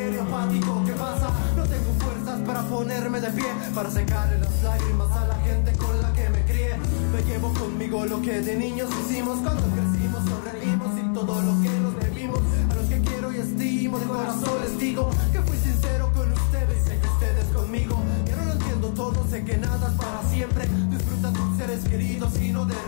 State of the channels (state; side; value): silent; right; digital silence